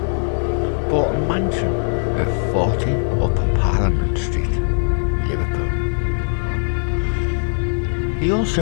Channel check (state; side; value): silent; right; digital silence